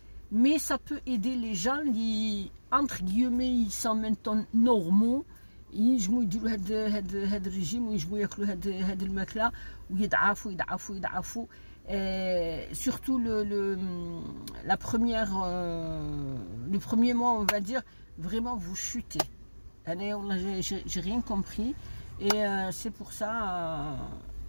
mais ça peut aider les gens qui entre guillemets ils sont maintenant normaux ينجموا يديروا هاد الرجيم وينجموا ياكلوا هاد الماكله ويضعفوا surtout la première les premiers mois on va dire vraiment vous chutez. J'ai rien compris et c'est pour ça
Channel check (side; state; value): both; inverted; correlation -1.00